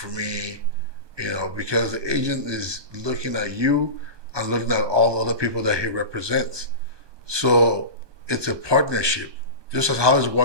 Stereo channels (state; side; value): late; left; 1.2 ms